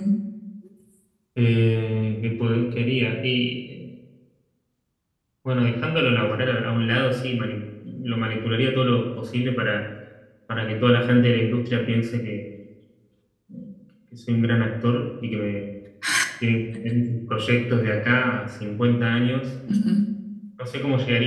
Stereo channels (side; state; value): both; identical; correlation 1.00